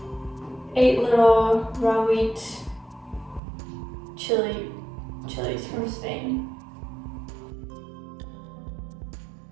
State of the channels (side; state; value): left; drops out; at 3.4 s